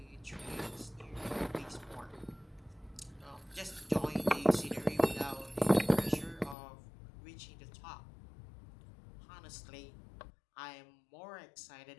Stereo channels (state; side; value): drops out; right; at 6.6 s